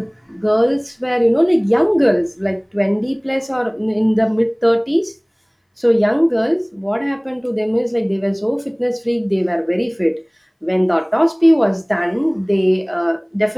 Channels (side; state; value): both; identical; correlation 1.00